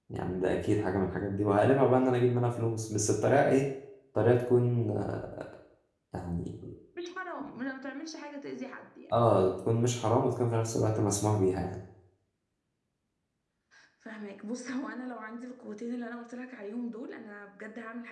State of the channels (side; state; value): both; identical; correlation 1.00